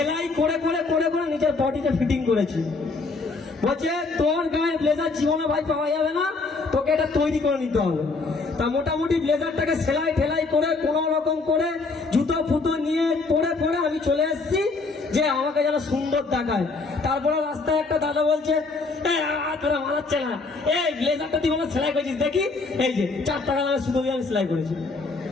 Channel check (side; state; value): right; quieter; 3.9 dB